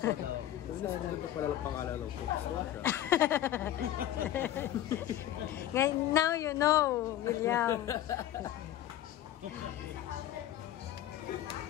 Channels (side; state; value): right; quieter; 12.5 dB